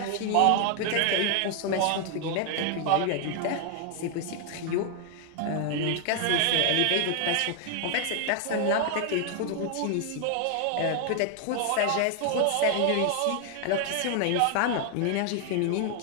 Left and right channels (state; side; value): different; both; correlation 0.00